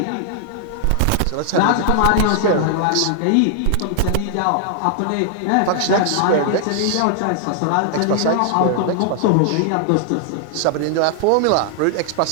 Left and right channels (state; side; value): different; both; correlation 0.00